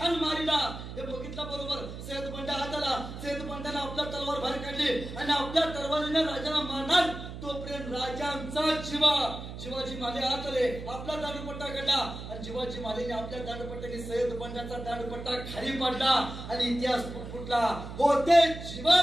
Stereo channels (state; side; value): noise; right; hum, 10 dB below the sound